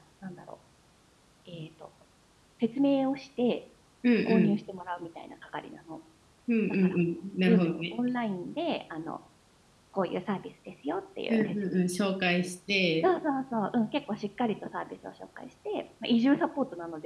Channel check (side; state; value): both; identical; correlation 1.00